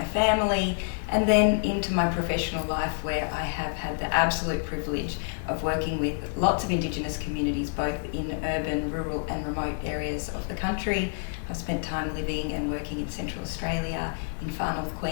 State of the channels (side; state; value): right; silent; 59 dB below the other